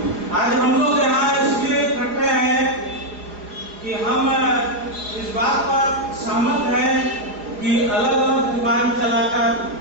आज हम लोग यहाँ इसलिए इकट्ठे हैं कि हम इस बात पर सहमत हैं कि अलग अलग दुकान चलाकर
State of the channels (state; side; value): late; left; 4.9 ms